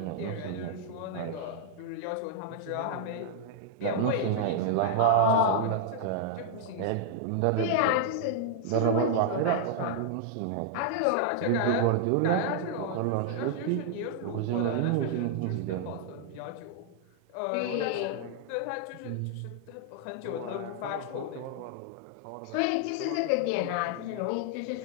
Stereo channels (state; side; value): different; both; correlation -0.01